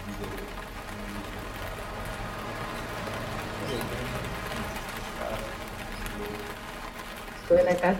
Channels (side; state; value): both; identical; correlation 1.00